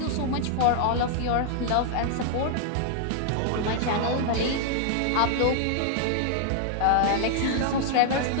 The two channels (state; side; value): different; both; correlation -0.01